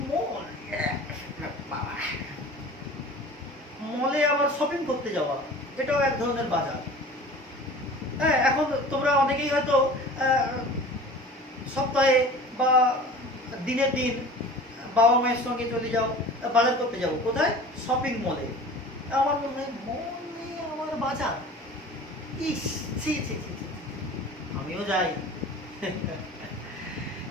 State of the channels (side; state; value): both; normal; correlation 0.40